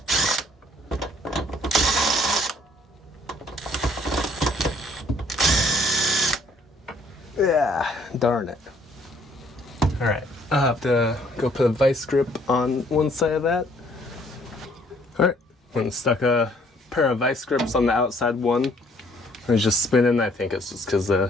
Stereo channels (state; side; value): normal; both; correlation 0.62